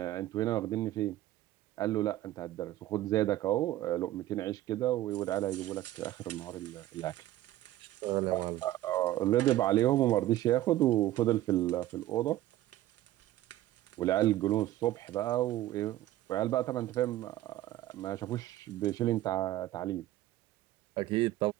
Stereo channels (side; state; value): left; quieter; 14.8 dB